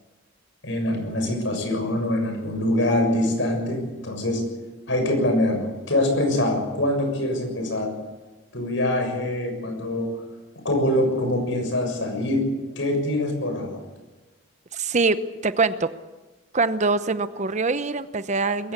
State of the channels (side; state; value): both; normal; correlation 0.18